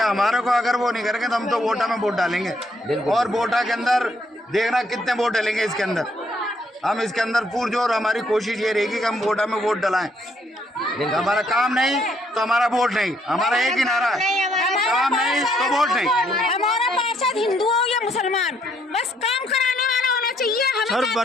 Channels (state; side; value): normal; both; correlation 0.70